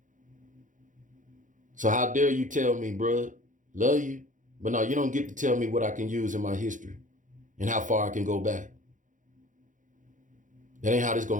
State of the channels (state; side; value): late; left; 0.37 ms